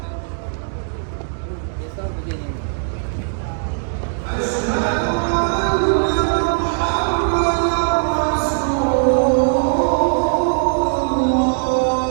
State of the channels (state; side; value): silent; left; digital silence